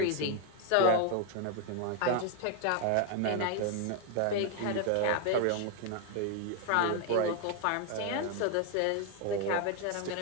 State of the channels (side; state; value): both; different; correlation 0.01